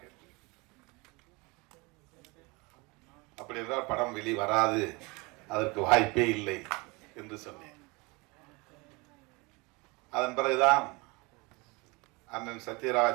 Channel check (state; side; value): quieter; left; 26.5 dB